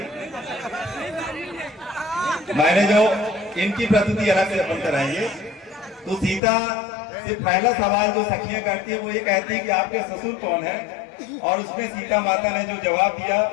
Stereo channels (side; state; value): right; drops out; at 6.4 s